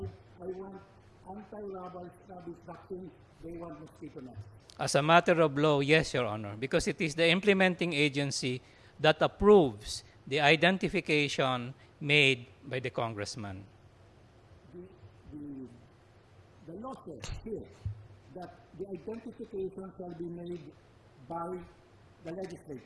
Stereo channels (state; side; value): identical; both; correlation 1.00